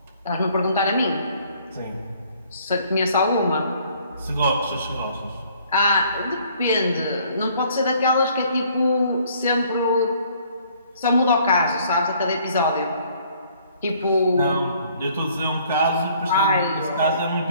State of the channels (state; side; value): inverted; both; correlation -0.60